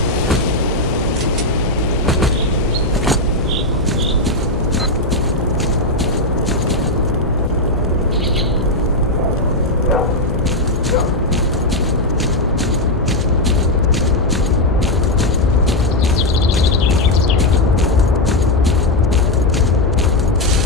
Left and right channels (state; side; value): noise; left; hum, 7 dB below the sound